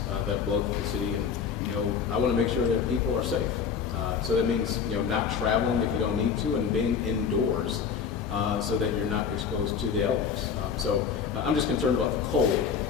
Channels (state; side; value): quieter; right; 6.6 dB